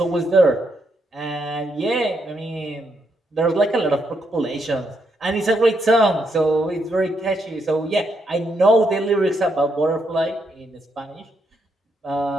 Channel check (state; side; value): normal; both; correlation 0.78